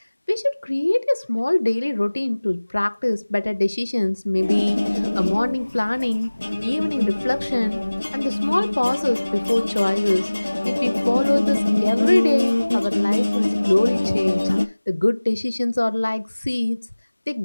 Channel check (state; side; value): inverted; both; correlation -1.00